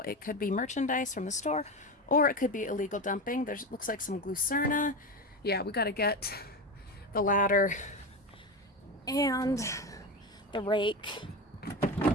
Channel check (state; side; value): normal; both; correlation 0.20